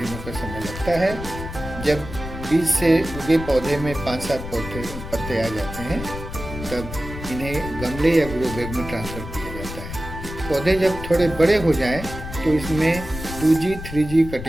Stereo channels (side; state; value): left; noise; rumble, 9 dB below the sound